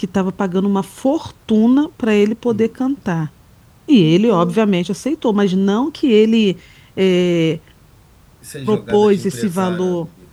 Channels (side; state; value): both; identical; correlation 1.00